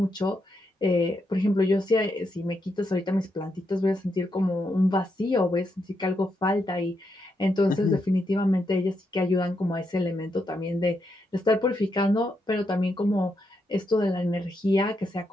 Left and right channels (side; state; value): both; normal; correlation 0.81